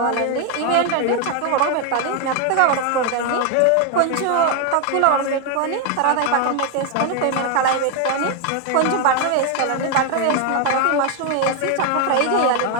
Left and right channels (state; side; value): different; both; correlation 0.01